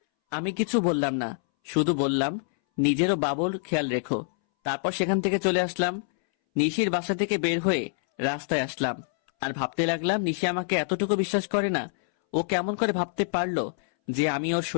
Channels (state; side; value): silent; right; 61 dB below the other